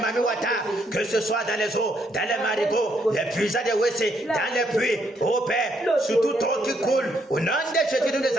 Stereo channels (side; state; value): both; normal; correlation 0.73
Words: Wata, que ce soit dans les eaux, dans les marigots, les puissants de WC, dans les puits, au Père, sur toute eau qui coule. Au nom de Jésus, nous les